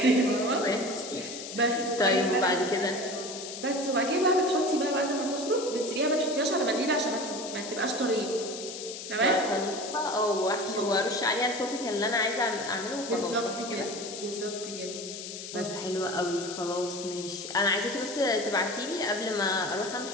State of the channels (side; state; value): left; noise; hiss, 9 dB below the sound